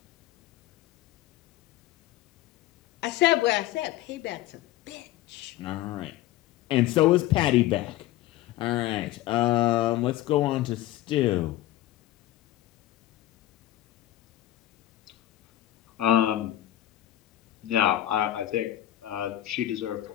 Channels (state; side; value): quieter; right; 14.5 dB